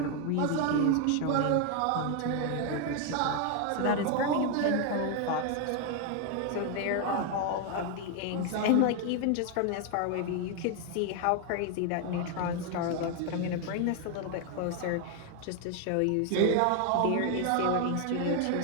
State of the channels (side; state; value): both; different; correlation 0.01